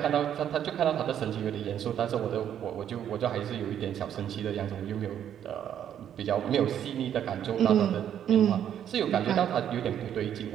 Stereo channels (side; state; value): left; quieter; 9.8 dB